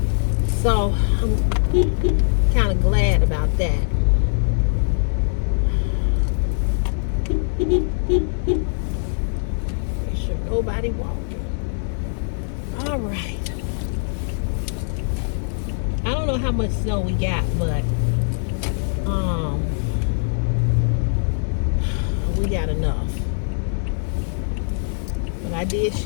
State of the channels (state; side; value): silent; right; digital silence